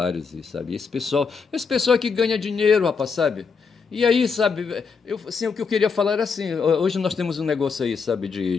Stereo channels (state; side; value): quieter; right; 5.4 dB